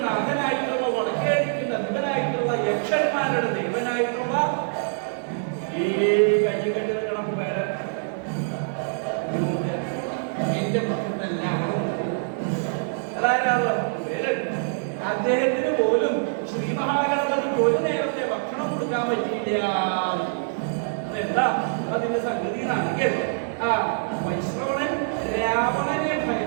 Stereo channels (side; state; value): left; silent; digital silence